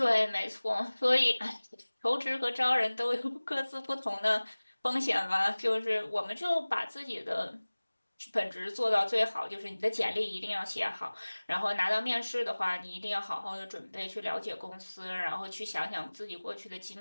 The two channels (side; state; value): both; inverted; correlation -1.00